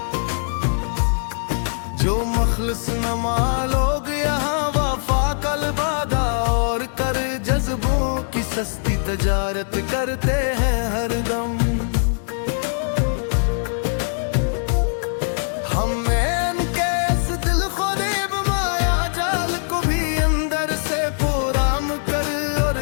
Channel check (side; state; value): right; silent; digital silence